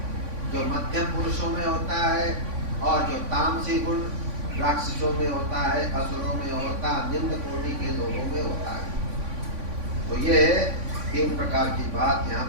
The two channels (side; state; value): left; late; 3.5 ms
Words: जो मध्यम पुरुषों में होता है, और जो तामसी गुण राक्षसों में होता है, असुरों में होता है, निम्न कोटि के लोगों में होता है। तो ये 3 प्रकार की बात यहाँ